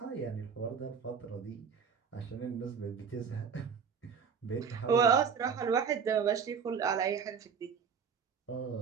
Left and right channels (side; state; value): left; quieter; 6.5 dB